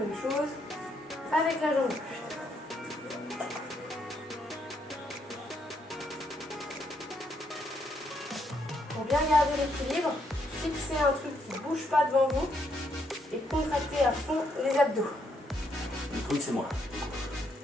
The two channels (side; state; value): both; normal; correlation 0.74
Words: chose avec la jambe gauche. Pour bien garder l'équilibre, fixez un truc qui ne bouge pas devant vous et contractez à fond les abdos. Le truc c'est moi.